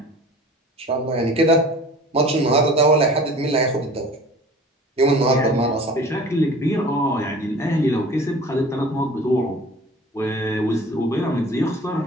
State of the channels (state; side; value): normal; both; correlation 0.44